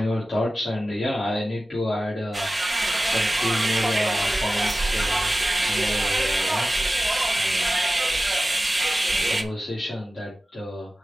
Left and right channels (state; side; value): normal; both; correlation 0.96